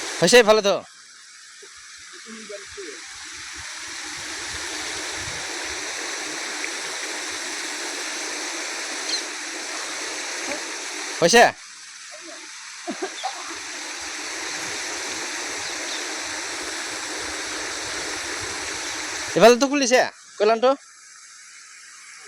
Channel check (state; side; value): identical; both; correlation 1.00